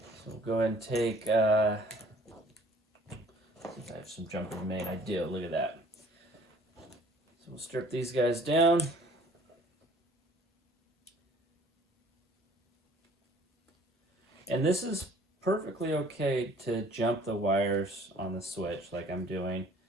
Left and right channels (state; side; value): normal; both; correlation 0.54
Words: go ahead and take, see if I have some jumpers made. I do, look at that. So strip these guys down. And this is perfectly okay to jump the wires on the switch like I'm doing. In